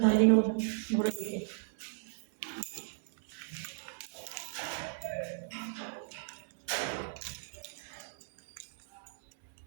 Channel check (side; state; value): left; silent; 54 dB below the other